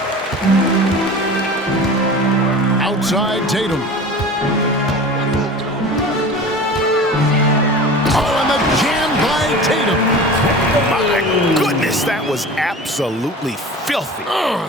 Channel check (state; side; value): normal; both; correlation 0.36